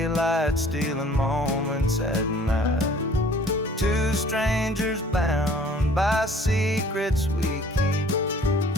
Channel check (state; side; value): normal; both; correlation 0.53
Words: stealing moments at night. Two strangers bound by secrets we keep,